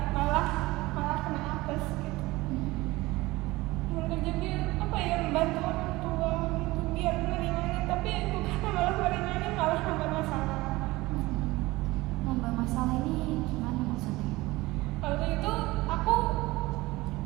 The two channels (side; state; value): left; quieter; 20.2 dB